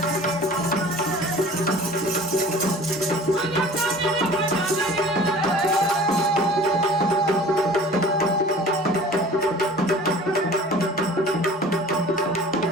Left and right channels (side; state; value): both; normal; correlation 0.44